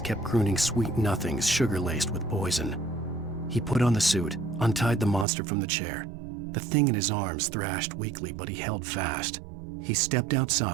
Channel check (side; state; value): left; drops out; at 5.2 s